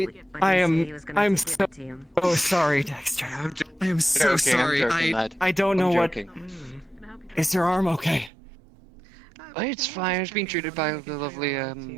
I'm so sorry, Dexter. I am so okay, I'm sorry. joking, lad. I don't know I'm what. joking. Is your arm okay? It's fine. I was being treated by the lovely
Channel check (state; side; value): drops out; left; at 8.3 s